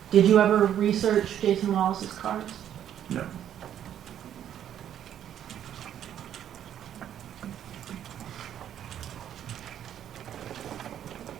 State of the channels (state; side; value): quieter; left; 10.3 dB